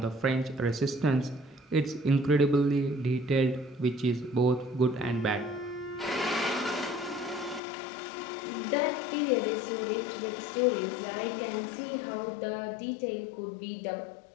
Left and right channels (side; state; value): right; drops out; at 7.6 s